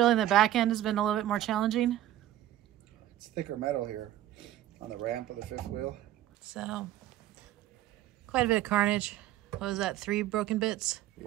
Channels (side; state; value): left; quieter; 13.2 dB